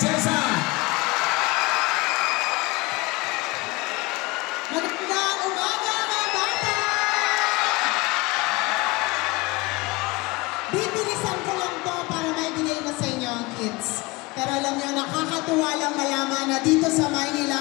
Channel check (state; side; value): quieter; right; 23.9 dB